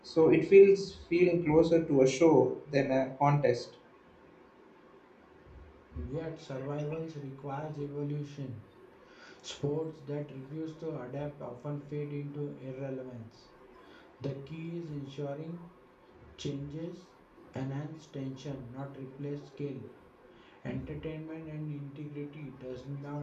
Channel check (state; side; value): identical; both; correlation 1.00